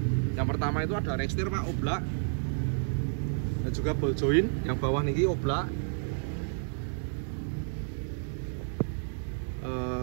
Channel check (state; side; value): silent; left; 57 dB below the other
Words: yang pertama itu ada rekstir Pak, oblak, dan juga ball joint yang bawah niki oblak.